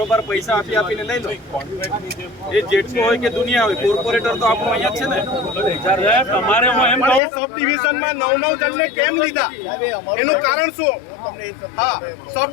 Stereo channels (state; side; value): drops out; right; at 7.2 s